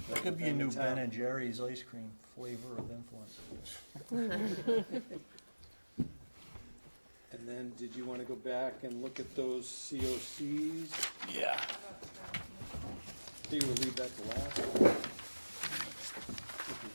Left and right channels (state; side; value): inverted; both; correlation -1.00